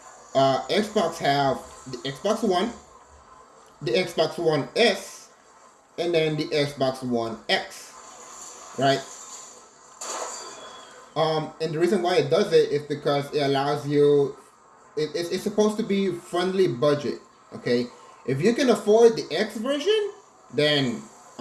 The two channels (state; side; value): identical; both; correlation 1.00